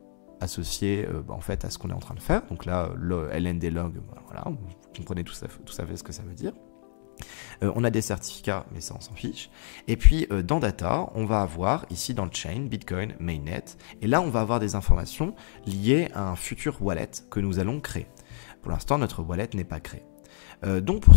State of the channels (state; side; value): silent; right; digital silence